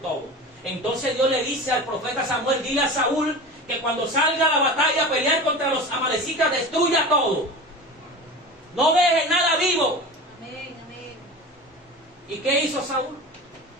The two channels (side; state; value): both; normal; correlation 0.32